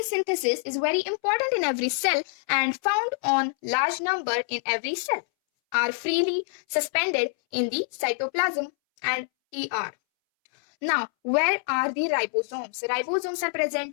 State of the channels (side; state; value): right; silent; 61 dB below the other